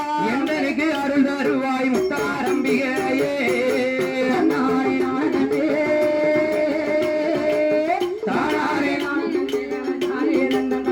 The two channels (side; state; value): both; identical; correlation 1.00